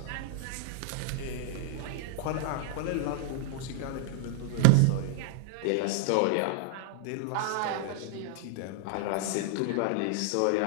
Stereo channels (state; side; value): different; both; correlation 0.00